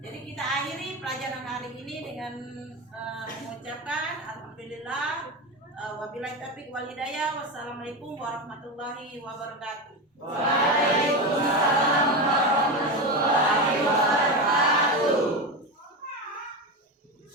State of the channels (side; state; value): both; normal; correlation 0.18